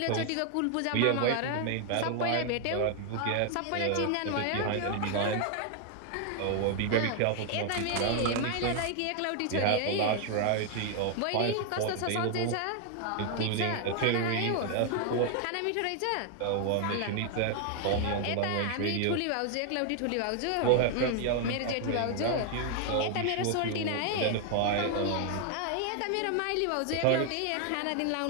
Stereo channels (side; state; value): both; different; correlation 0.00